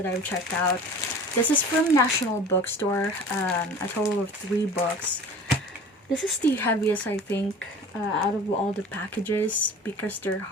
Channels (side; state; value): both; normal; correlation 0.41